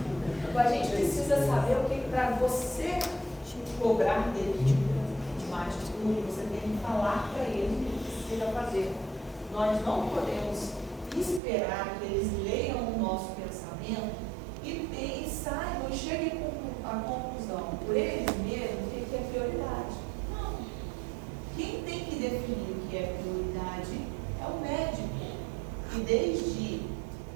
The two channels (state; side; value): drops out; left; at 11.4 s